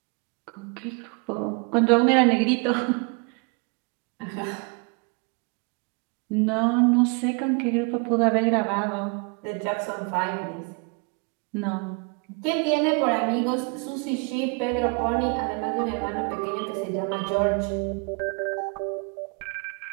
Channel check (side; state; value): left; quieter; 33.8 dB